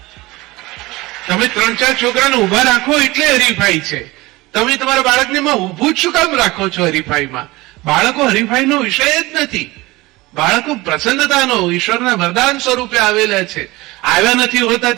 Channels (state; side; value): quieter; left; 20.9 dB